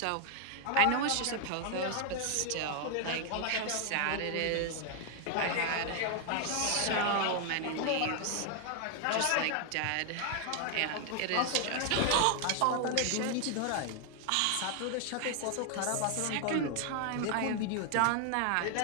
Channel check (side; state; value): both; different; correlation 0.00